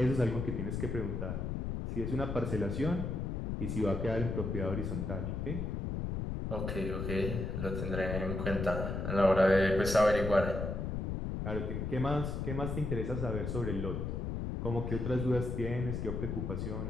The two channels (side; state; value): left; noise; rumble, 2 dB below the sound